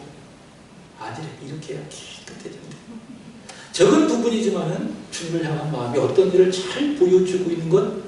아니래, 이렇게 해야 깨끗해진대. 적은 부분이지만은 주님을 향한 마음이 어떤 일을 잘 보여주고 있는 건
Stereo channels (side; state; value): both; identical; correlation 1.00